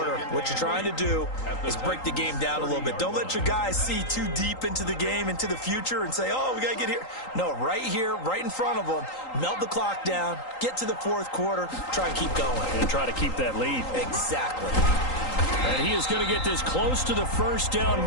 What you're trying to do is break the game down a little bit. Don't let your guys see too deep into the game, into the future, and say, oh, we got to get here. No, right here, right in front of them, melt the clock down, get to the 4th quarter, try and keep going. And try to keep that lead. Exactly. And he is going to get this close to the 1st down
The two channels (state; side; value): late; right; 3.8 ms